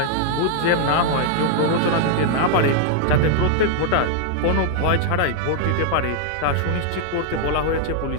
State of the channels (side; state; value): both; different; correlation 0.00